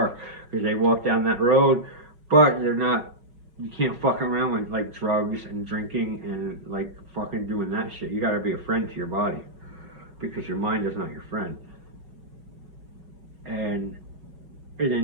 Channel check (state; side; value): late; left; 5.5 ms